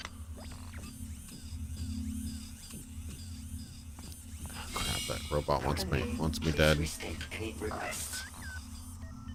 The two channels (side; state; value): both; identical; correlation 1.00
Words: Crap, that robot wants me dead.